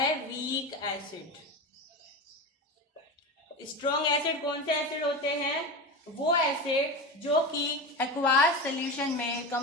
वीक एसिड। स्ट्रॉन्ग एसिड कौन से एसिड होते हैं? वो एसिड जो कि एक्वास सॉल्यूशन में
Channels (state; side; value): normal; both; correlation 0.23